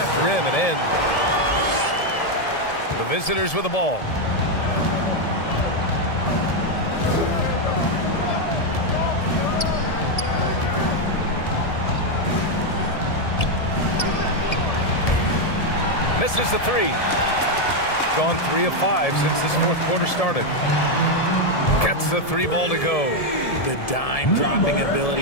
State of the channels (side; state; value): right; late; 1.7 ms